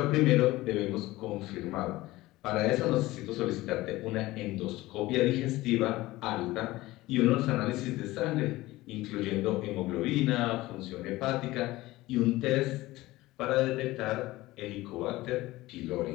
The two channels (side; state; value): right; quieter; 18.4 dB